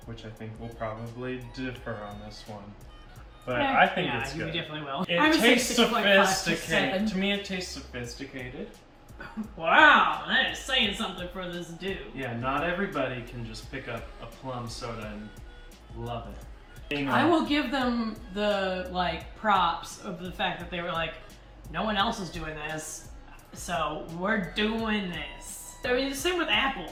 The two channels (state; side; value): identical; both; correlation 1.00